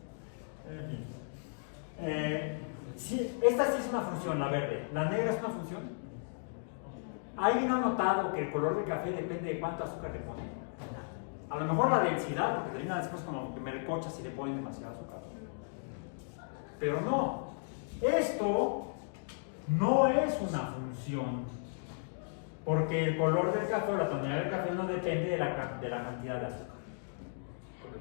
Sí, esta sí es una función, la verde. La negra es una función. ¿Alguien ha notado que el color del café depende de cuánto azúcar le ponen? A lo mejor la densidad, porque termina después como que me recocha si le ponen demasiado azúcar. Pero no. Esto no es una función. Porque el color del café o la tonalidad del café no depende de la cantidad de azúcar.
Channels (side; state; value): right; silent; digital silence